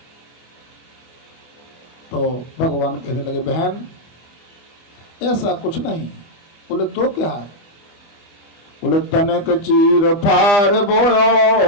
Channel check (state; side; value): late; right; 25 ms